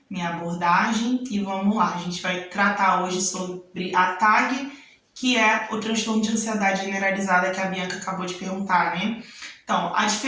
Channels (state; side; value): identical; both; correlation 1.00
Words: Minha abordagem, e vamos lá, a gente vai tratar hoje sobre a TAG, que é o transtorno de ansiedade generalizada que a Bianca acabou de perguntar, né? Então, a